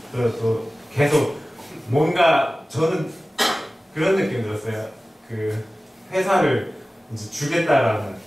그래서 또 계속 뭔가 저는 그런 느낌이 들었어요. 그 회사를 이제 주겠다라는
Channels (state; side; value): normal; both; correlation 0.97